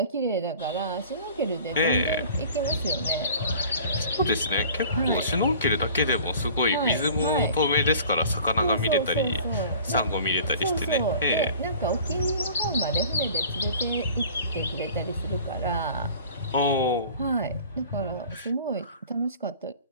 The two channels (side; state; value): both; inverted; correlation -0.45